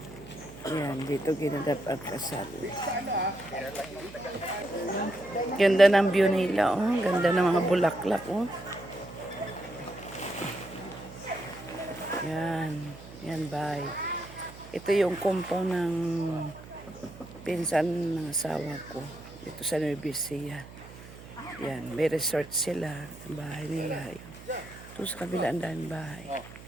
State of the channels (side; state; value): right; noise; hum, 17 dB below the sound